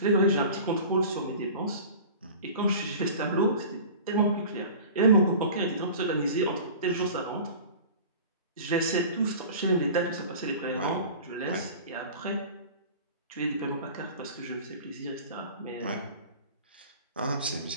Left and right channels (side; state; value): both; inverted; correlation -0.39